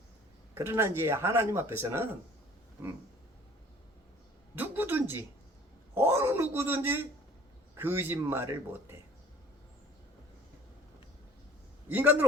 그러나 이제 하나님 앞에서는 누구든지 어느 누구든지 거짓말을 못해. 인간들은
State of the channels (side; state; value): both; normal; correlation 0.51